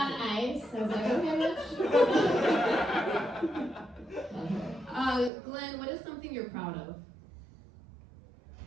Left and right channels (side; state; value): left; drops out; at 5.3 s